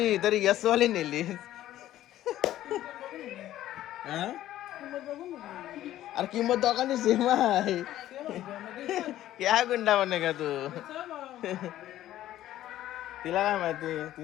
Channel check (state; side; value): quieter; right; 13.5 dB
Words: तरी यस वाली नेली अरे किंमत दोघांनी सेम आहे क्या गुंडा बने का तू तिला काय माहिती